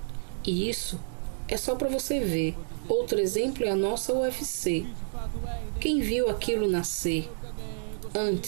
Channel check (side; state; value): left; silent; digital silence